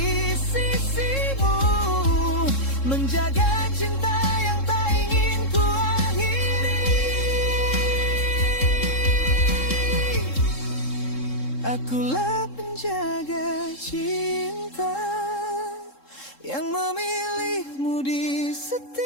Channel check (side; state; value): right; late; 3.7 ms